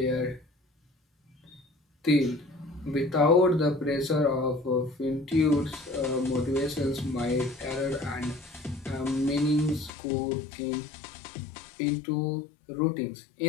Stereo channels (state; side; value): drops out; right; at 9.9 s